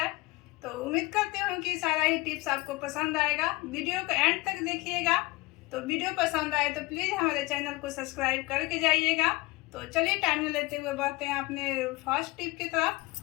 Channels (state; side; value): quieter; right; 22.5 dB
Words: तो उम्मीद करती हूँ कि सारा ही टिप्स आपको पसंद आएगा। वीडियो को एंड तक देखिएगा। तो वीडियो पसंद आए तो प्लीज़ हमारे चैनल को सब्सक्राइब करके जाइएगा। तो चलिए टाइम न लेते हुए बढ़ते हैं अपने फर्स्ट टिप की